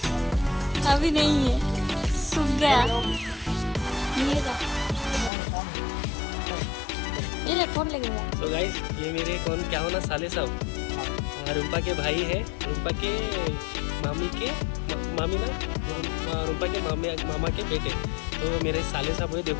अभी नहीं है, सूख गया। ये ले फोन लगेगा। तो गाइस ये मेरे कौन क्या होना साले साहब, रूपा के भाई है, रूपा के मामी ना, रूपा के मामा के बेटे। तो मेरे साले साहब हुए।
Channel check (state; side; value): drops out; right; at 5.3 s